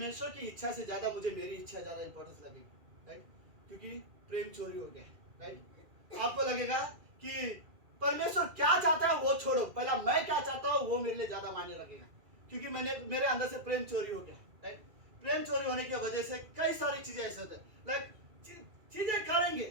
की इच्छा से ज्यादा मुझे मेरी इच्छा ज्यादा इंपॉर्टेंस लगेगी, राइट, क्योंकि प्रेम चोरी हो गया, राइट। आपको लगेगा कि परमेश्वर क्या चाहता है वो छोड़ो, पहला मैं क्या चाहता हूँ वो मेरे लिए ज्यादा मायने लगेगा, क्योंकि मेरे अंदर से प्रेम चोरी हो गया, राइट। प्रेम चोरी होने की वजह से कई सारी चीजें ऐसे होते हैं, लाइक चीजें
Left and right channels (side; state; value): left; late; 2.3 ms